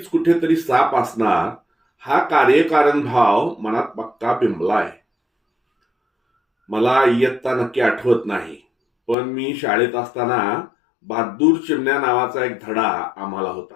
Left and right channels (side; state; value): right; drops out; at 9.2 s